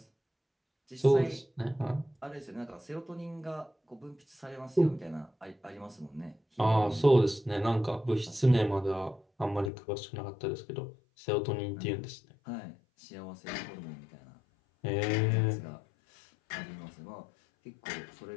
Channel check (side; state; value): right; drops out; at 9.7 s